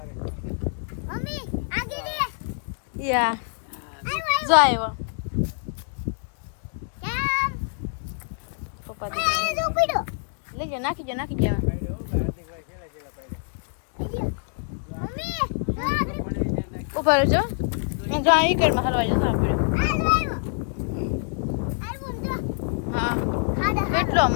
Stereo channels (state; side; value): silent; right; 61 dB below the other